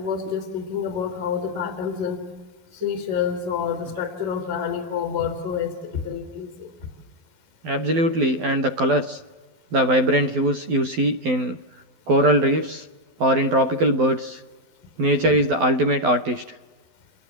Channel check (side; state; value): left; late; 12 ms